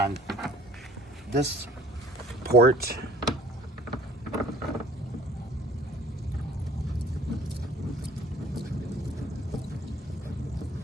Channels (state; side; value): normal; both; correlation 0.52